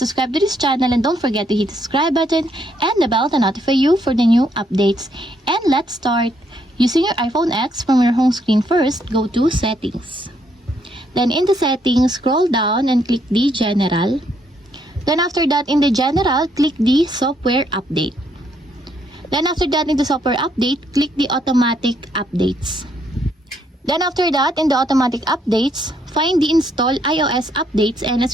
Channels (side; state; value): both; normal; correlation 0.72